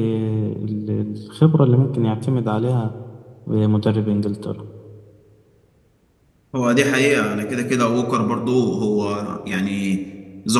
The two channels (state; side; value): identical; both; correlation 1.00